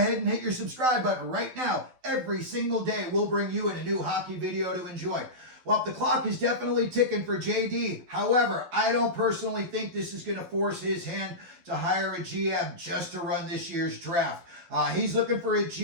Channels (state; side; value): late; left; 12 ms